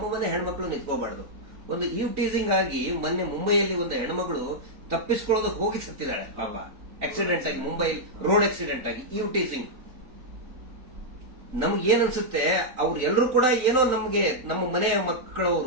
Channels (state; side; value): late; left; 3.9 ms